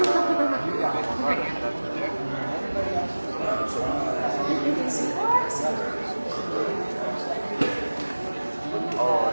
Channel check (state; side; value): inverted; both; correlation -1.00